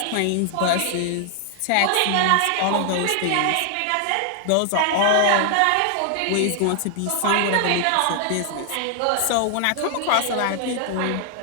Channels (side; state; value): both; different; correlation 0.00